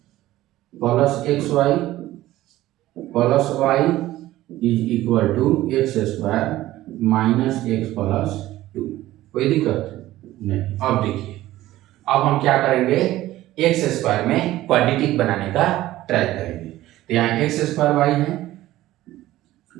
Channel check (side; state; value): left; quieter; 15.6 dB